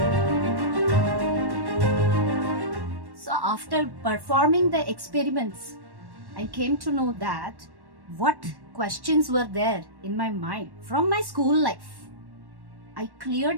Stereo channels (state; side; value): late; left; 1.1 ms